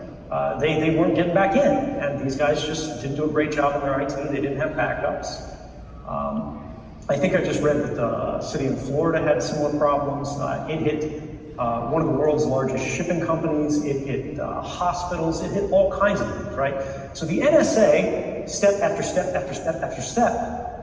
They weren't getting back in, and these guys just didn't do a great job in their IT. They didn't have backups. I think I just read that the city in Florida had similar problems. It hit one of the world's largest shipping companies. It hit hospitals. It hit all kinds of things, right? So the NSA, step after step after step after step,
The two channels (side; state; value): both; identical; correlation 1.00